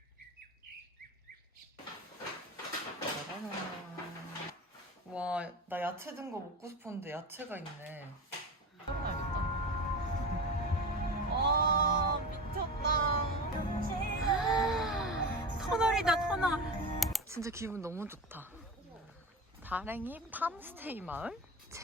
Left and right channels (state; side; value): normal; both; correlation 0.27